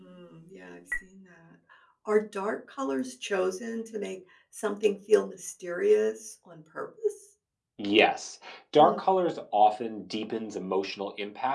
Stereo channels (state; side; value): identical; both; correlation 1.00